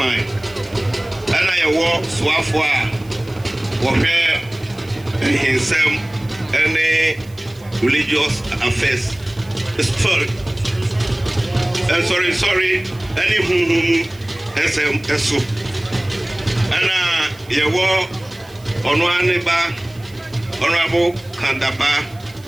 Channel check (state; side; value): noise; right; hiss, 26 dB below the sound